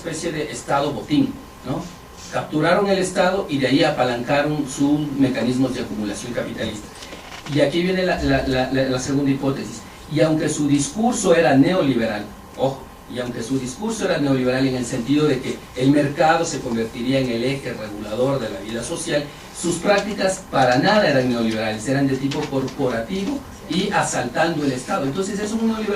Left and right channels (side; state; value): both; identical; correlation 1.00